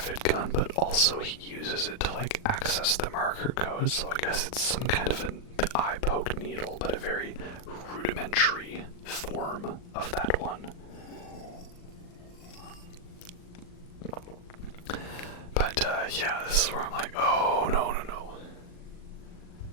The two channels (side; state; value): right; late; 39 ms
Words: gun, but also he uses it to like access the marker code, so I guess it's some kind of an eye poke needle, but a very rudimentary form of that one. But yeah, this is where I'm like, oh no.